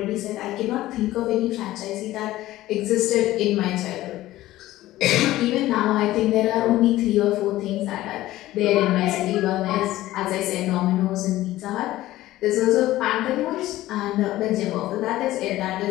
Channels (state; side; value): quieter; right; 15.8 dB